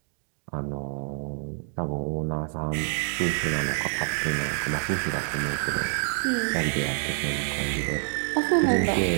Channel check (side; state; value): left; silent; digital silence